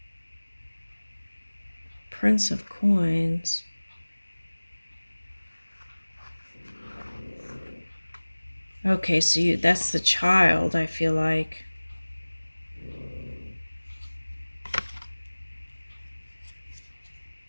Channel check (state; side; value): inverted; both; correlation -1.00